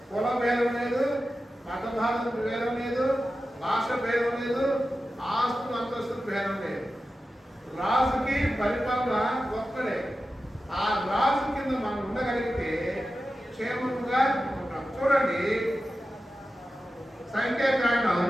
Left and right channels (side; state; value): both; normal; correlation 0.93